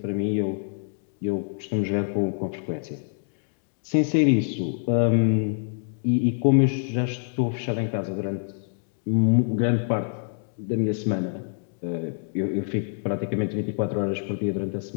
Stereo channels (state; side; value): silent; right; digital silence